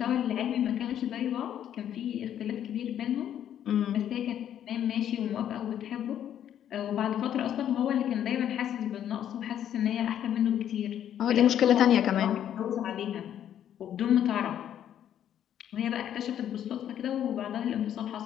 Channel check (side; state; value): right; quieter; 10.3 dB